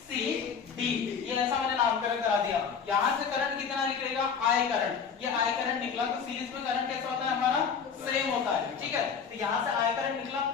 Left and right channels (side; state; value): right; quieter; 6.4 dB